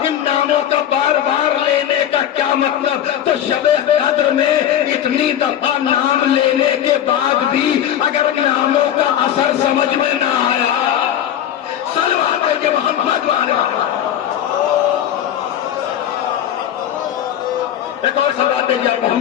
ان ناموں کا بار بار لینے کا کیا مطلب، تو شب قدر میں اتنی دفعہ نام لینے کے بعد بھی اگر ناموں کا اثر سمجھ میں نہ آیا، سلوات ہے کہ محمد والے ایک اور صلوات دیجیے آپ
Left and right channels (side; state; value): right; quieter; 10.6 dB